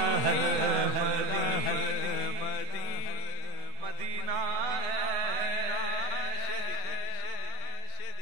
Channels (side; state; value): left; late; 7.9 ms